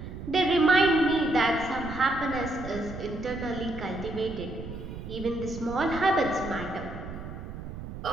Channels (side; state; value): right; noise; rumble, 10 dB below the sound